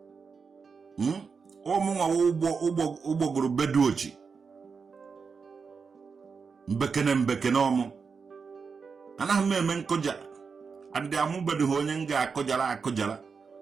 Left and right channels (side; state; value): left; quieter; 5.4 dB